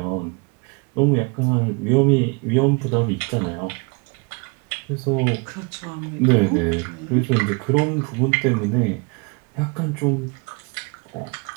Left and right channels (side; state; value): left; quieter; 31.0 dB